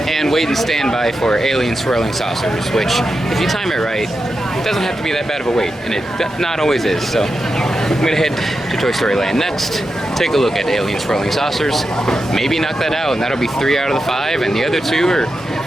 and wait and stand by for Alien Swirling Saucers, which, if you time it right, it doesn't have to be that bad of a wait, and it not always is. So I'm gonna head to Toy Story Land next, take a look at Alien Swirling Saucers, maybe knock that out, and that'll be 3 out of the 5, and the other 2 are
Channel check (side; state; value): both; normal; correlation 0.89